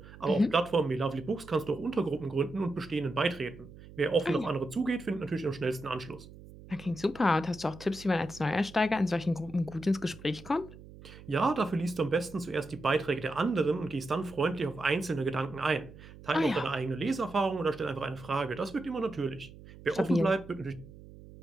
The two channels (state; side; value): noise; right; hum, 18 dB below the sound